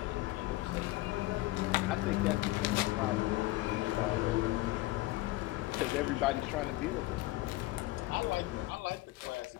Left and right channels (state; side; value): quieter; right; 19.0 dB